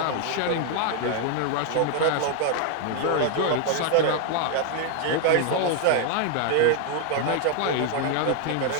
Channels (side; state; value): both; different; correlation 0.00